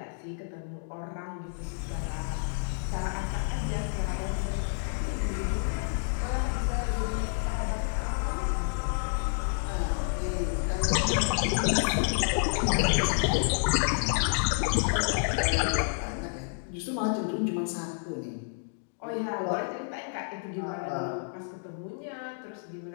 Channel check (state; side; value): silent; right; digital silence